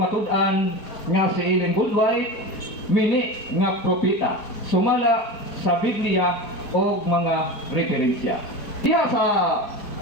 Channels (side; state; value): right; late; 4.6 ms